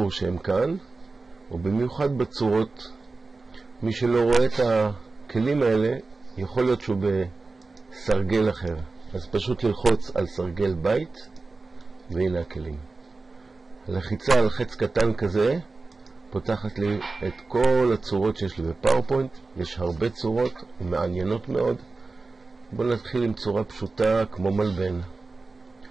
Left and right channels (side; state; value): left; quieter; 3.7 dB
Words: שהם כאן, ובמיוחד בצורות. מי שלא רואה את הכלים האלה יכול להיות שהוא בסרגל אחר, אז פשוט ללחוץ על סרגל בית והנה הכלים. הלחיצה על חץ קטן כזה פותחת לי את כל הצורות שיש לי בפאורפוינט. יש הרבה צורות ומעניינות מאוד. בואו נתחיל עם צורה פשוטה כמו מלבן.